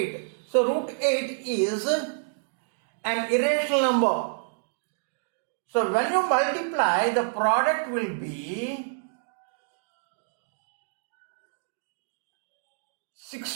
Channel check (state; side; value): silent; left; digital silence